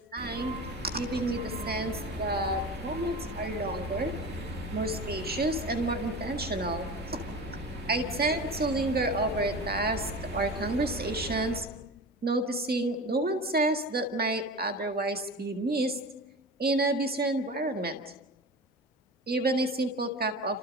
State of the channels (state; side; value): normal; both; correlation 0.32